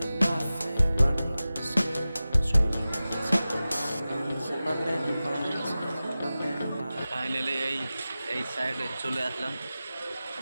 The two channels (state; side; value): inverted; both; correlation -0.96